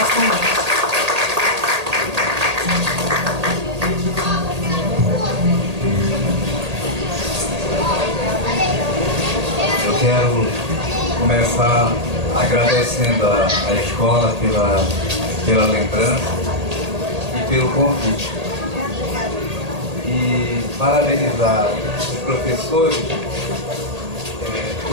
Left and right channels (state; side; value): late; left; 1.8 ms